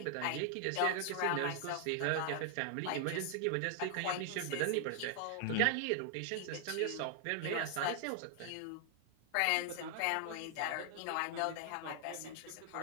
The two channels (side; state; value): both; different; correlation 0.00